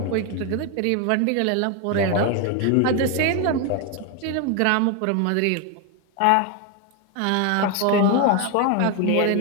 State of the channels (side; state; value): both; different; correlation 0.01